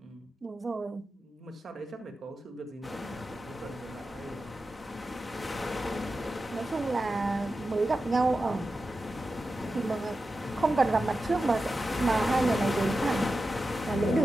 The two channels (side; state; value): both; normal; correlation 0.92